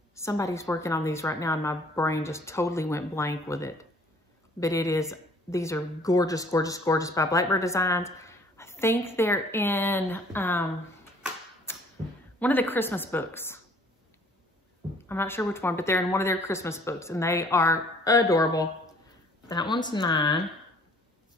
Somebody's working on these right now, and my brain just totally went blank with it. But these are gorgeous, gorgeous, gorgeous by Blackbird Designs. I think they're in one of the Christmas books. I'm not sure which one, but they're in one of their Christmas books, and they are adorable. That one's 9.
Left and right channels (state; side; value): normal; both; correlation 0.56